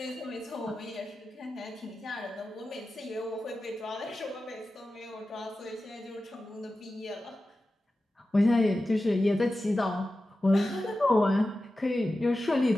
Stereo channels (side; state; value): both; normal; correlation 0.93